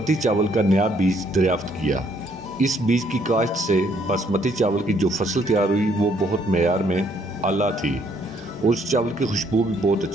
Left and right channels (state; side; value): normal; both; correlation 0.67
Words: چاول کا نیا بیج دریافت کیا۔ اس بیج کی کاشت سے باسمتی چاول کی جو فصل تیار ہوئی وہ بہت معیار میں اعلیٰ تھی اور اس چاول کی خوشبو بھی بہت